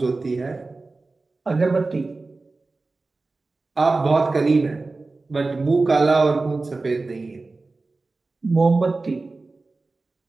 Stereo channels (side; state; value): left; quieter; 3.5 dB